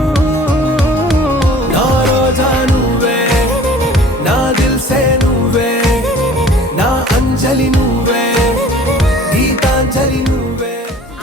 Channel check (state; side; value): normal; both; correlation 0.48